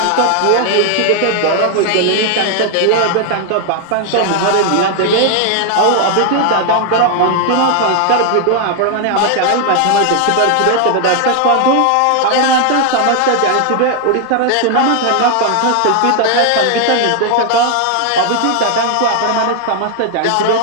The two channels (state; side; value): different; both; correlation 0.00